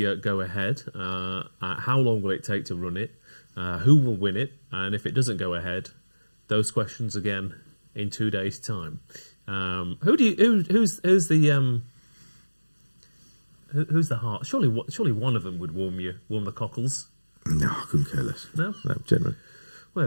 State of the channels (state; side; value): inverted; both; correlation -1.00